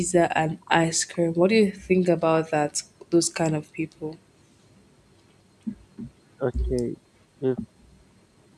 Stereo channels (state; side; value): identical; both; correlation 1.00